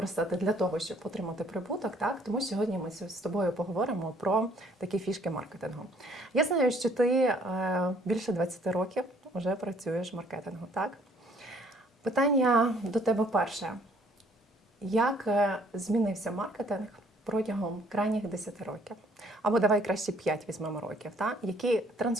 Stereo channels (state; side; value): normal; both; correlation 0.61